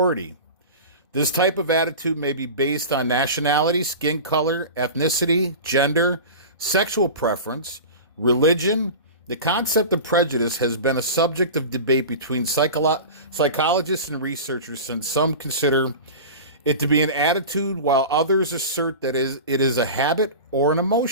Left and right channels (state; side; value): inverted; both; correlation -0.31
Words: This type of attitude may be based on nationality, skin color, ethnicity, gender, sexual preference, religion. The concept of prejudice has been a subject of debate between psychologists and researchers, since some consider it to be an attitude while others assert that it is a habit or an